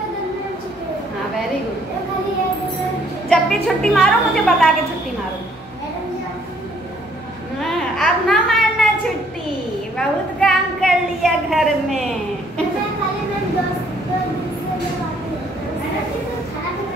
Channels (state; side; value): normal; both; correlation 0.64